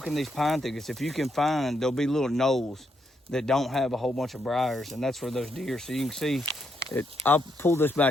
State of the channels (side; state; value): both; normal; correlation 0.78